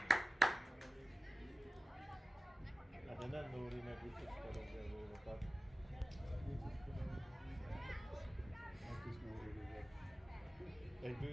Hát de nem Nóri meg biciklarozza a gólokat. Azt is Nóri rúgott. Egy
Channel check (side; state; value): both; normal; correlation 0.97